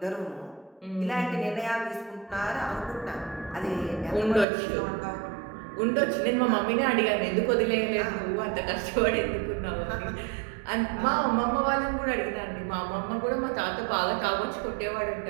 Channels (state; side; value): drops out; left; at 4.5 s